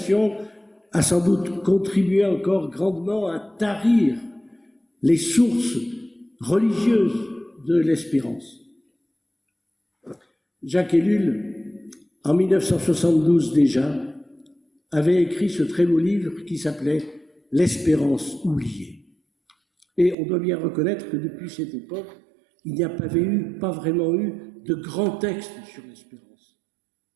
a sans doute contribué encore grandement à tarir les sources religieuses de l'espérance. Jacques Ellul, en 1972 déjà, avait écrit ce très beau livre qui s'appelait « L'espérance oubliée ». Et on doit bien reconnaître que depuis cette époque, il n'y a pas vraiment eu de grands textes sur l'espérance.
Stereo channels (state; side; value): drops out; left; at 20.2 s